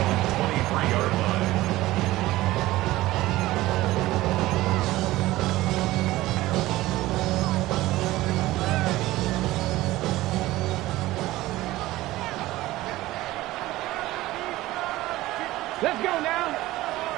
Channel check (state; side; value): quieter; left; 17.3 dB